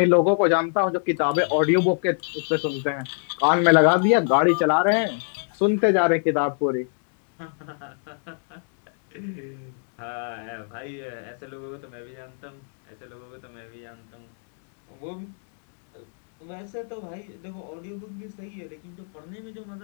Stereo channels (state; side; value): silent; right; digital silence